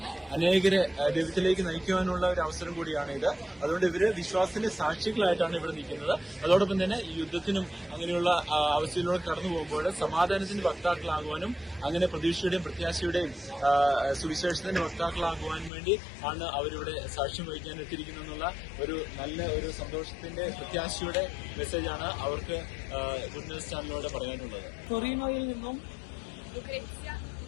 അനേകരെ ദൈവത്തിലേക്ക് നയിക്കുവാനുള്ള ഒരു അവസരം കൂടിയാണ് ഇത്. അതുകൊണ്ട് ഇവര് വിശ്വാസത്തിന്റെ സാക്ഷികളായിട്ടാണ് ഇവിടെ നിൽക്കുന്നത്. അതോടൊപ്പം തന്നെ ഈ യുദ്ധത്തിനും അങ്ങനെയുള്ള അവസ്ഥയിലൂടെ കടന്നു പോകുമ്പോൾ സമാധാനത്തിന്റെ വക്താക്കളാകുവാനും അങ്ങനെ പ്രതീക്ഷയുടെയും പ്രത്യാശയുടെയും സുവിശേഷത്തിന്റെ വക്താക്കളാകുവാനും വേണ്ടി ആണ് അവരിവിടെ സാക്ഷ്യം വഹിക്കാൻ എത്തിയിരിക്കുന്നുള്ള ഒരു നല്ല ഒരു സന്തോഷത്തിന്റെ പ്രത്യാശയുടെ മെസ്സേജാണ് അവർക്ക് ഗുഡ് ന്യൂസ് ചാനലിലൂടെ പറയാനുള്ളത്. ടൊറീനോയിൽ നിന്നും Lucrezia,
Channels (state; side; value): drops out; right; at 15.7 s